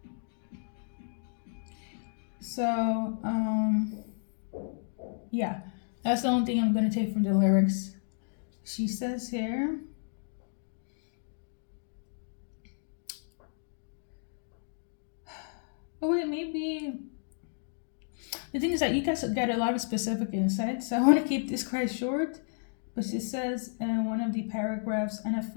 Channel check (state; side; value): silent; right; digital silence